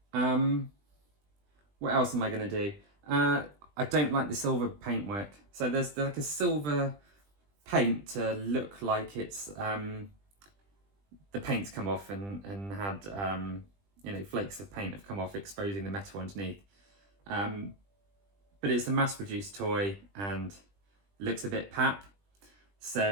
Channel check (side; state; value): left; late; 20 ms